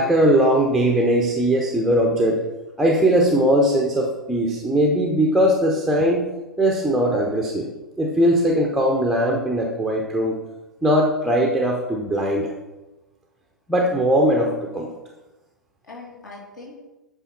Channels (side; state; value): both; normal; correlation 0.34